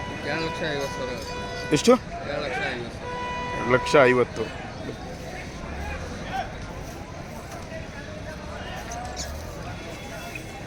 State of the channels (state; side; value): identical; both; correlation 1.00